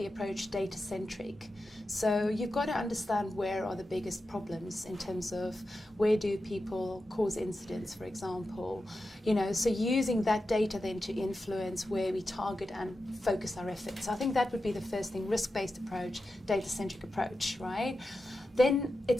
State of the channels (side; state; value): both; normal; correlation 0.91